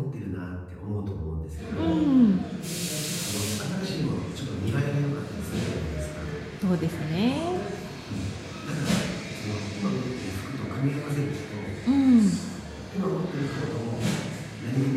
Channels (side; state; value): both; identical; correlation 1.00